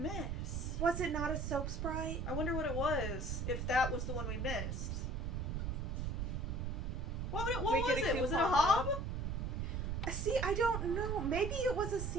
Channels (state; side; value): noise; right; rumble, 1 dB below the sound